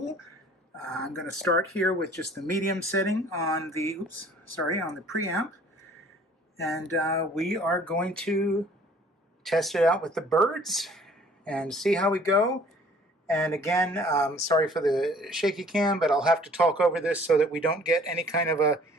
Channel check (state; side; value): normal; both; correlation 0.54